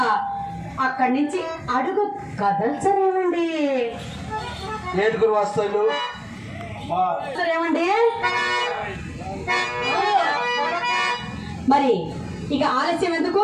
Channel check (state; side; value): identical; both; correlation 1.00